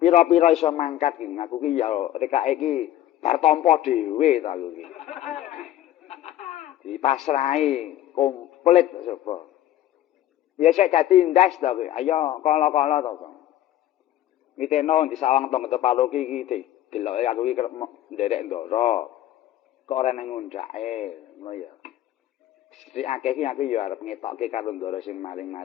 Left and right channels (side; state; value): right; quieter; 13.1 dB